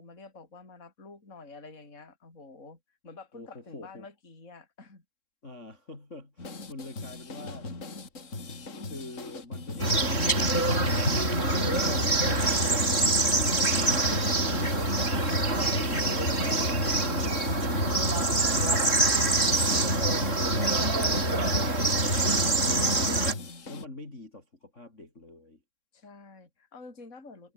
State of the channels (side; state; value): right; late; 3.7 ms